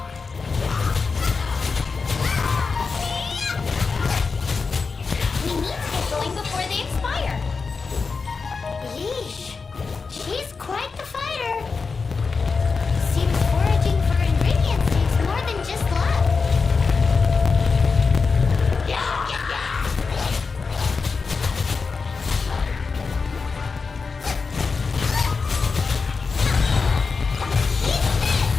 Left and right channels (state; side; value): quieter; right; 4.7 dB